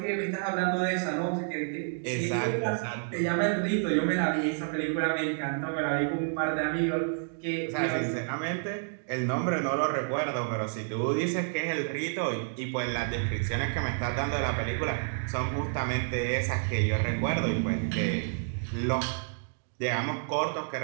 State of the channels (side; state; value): left; silent; digital silence